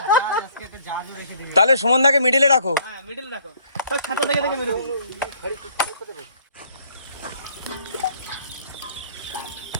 তাহলে সুমনদাকে মিডিলে রাখো। হ্যাঁ মিডল রাখো, স্যার খাতা দেখে দেখে মেরে দিই।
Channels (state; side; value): inverted; both; correlation -0.60